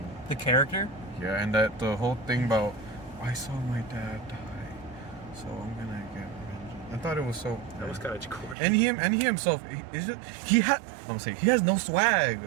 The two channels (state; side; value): drops out; left; at 8.6 s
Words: The character. Yeah, and that the whole thing about I saw my dad die, so I'm gonna get revenge. I thought it was so. That was kind of corny. And he himself, he has no swag.